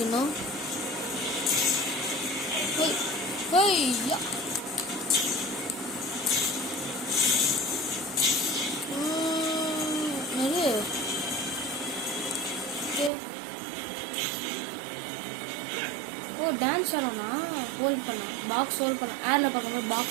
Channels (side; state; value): left; drops out; at 13.1 s